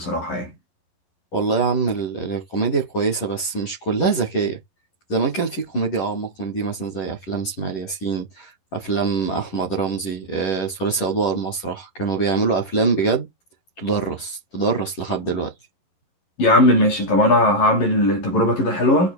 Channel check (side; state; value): right; late; 11 ms